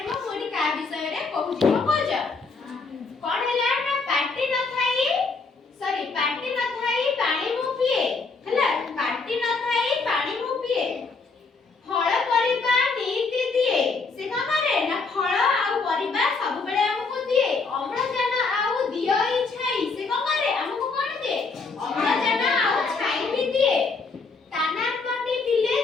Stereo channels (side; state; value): right; quieter; 4.3 dB